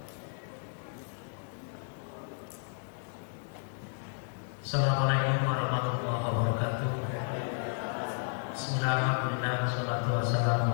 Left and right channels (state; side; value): silent; right; digital silence